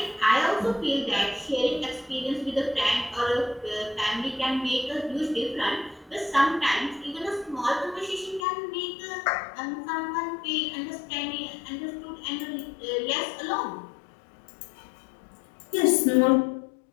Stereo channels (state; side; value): drops out; right; at 8.5 s